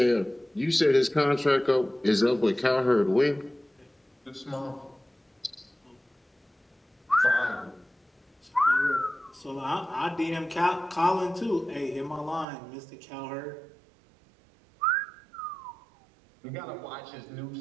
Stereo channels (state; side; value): drops out; left; at 12.5 s